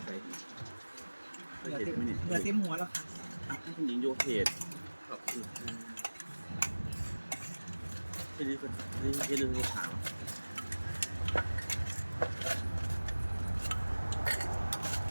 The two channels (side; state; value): both; inverted; correlation -1.00